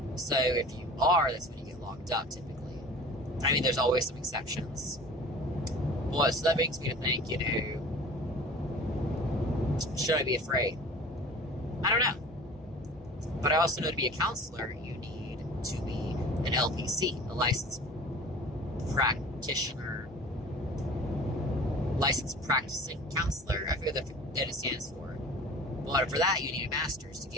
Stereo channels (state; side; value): normal; both; correlation 0.42